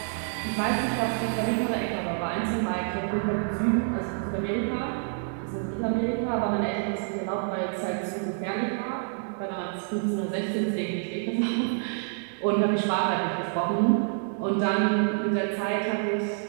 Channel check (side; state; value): left; silent; digital silence